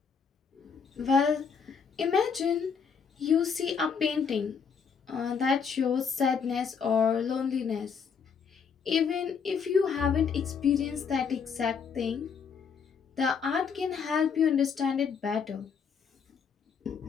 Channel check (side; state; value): right; quieter; 6.3 dB